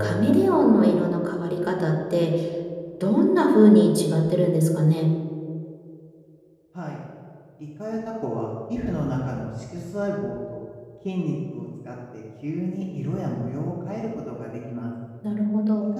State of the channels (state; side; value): identical; both; correlation 1.00